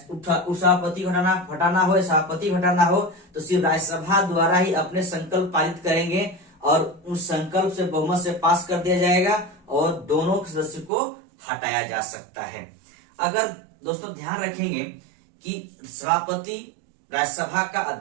उपसभापति हटाना हो या सभापति हटाना हो तो सिर्फ राज्यसभा द्वारा ही अपने संकल्प पारित करेंगे और उस संकल्प से बहुमत से पास कर दिया जाएगा और दोनों सदस्य को हटाया जा सकता है। अगर दोस्तों ध्यान रखेंगे कि सभापति राज्यसभा का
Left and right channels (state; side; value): drops out; left; at 10.9 s